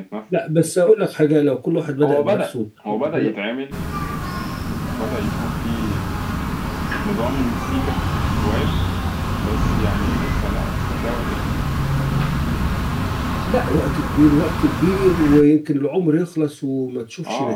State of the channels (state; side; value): identical; both; correlation 1.00